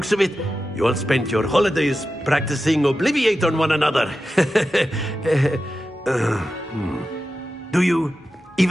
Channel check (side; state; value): both; normal; correlation 0.91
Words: of it, you all spent your holidays practicing Obliviate on one another. Do you